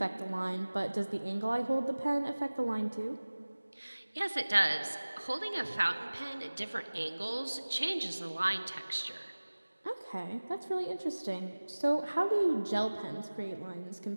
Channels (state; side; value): inverted; both; correlation -1.00